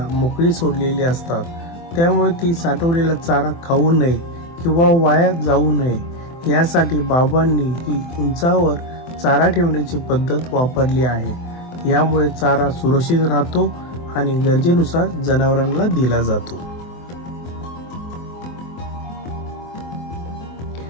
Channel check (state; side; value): late; right; 24 ms